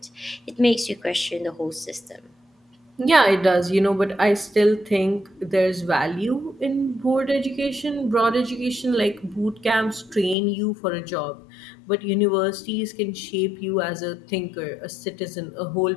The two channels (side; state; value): right; drops out; at 10.4 s